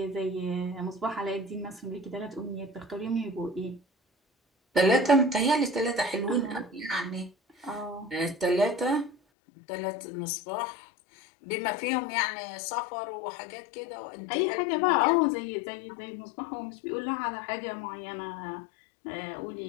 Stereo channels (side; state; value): right; drops out; at 9.2 s